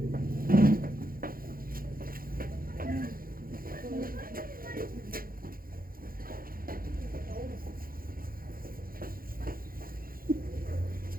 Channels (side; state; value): left; late; 0.42 ms